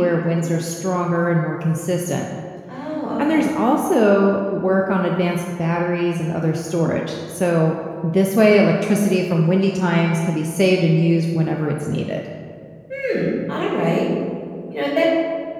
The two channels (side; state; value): both; identical; correlation 1.00